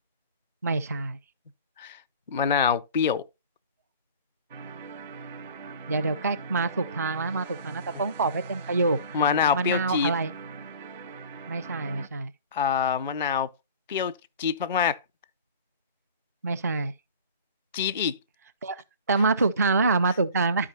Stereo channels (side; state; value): both; inverted; correlation -0.43